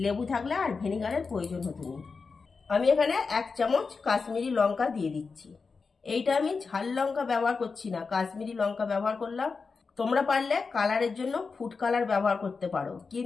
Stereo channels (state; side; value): quieter; right; 4.7 dB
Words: লেবু থাকলে আর ভিনিগারের প্রয়োজন হতো না। আমি এখানে 1 চামচ কাশ্মীরি লঙ্কা দিয়ে দিচ্ছি। এইটা আমি ঝাল লঙ্কা ব্যবহার করছি না, কাশ্মীরি লঙ্কা ব্যবহার করলাম। তোমরা পারলে কালারের জন্য ফুড কালার ব্যবহার করতে পারো,